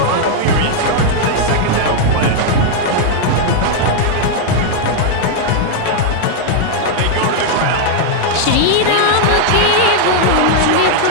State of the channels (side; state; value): both; different; correlation 0.00